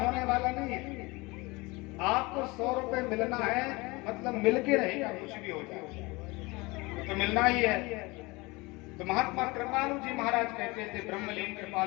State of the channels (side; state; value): right; quieter; 24.1 dB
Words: वाला नहीं है। आपको 100 रुपए मिलना है, मतलब मिल के रहेगा, कुछ भी हो जाए तो मिलना ही है। तो महात्मा कृपालु जी महाराज कहते थे, ब्रह्मलीन